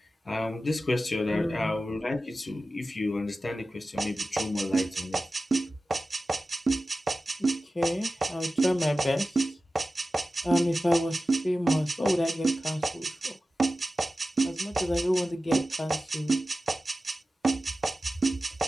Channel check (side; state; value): both; normal; correlation 0.95